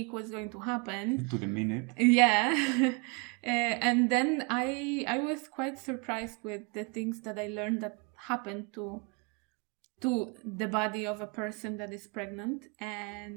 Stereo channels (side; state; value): left; quieter; 32.1 dB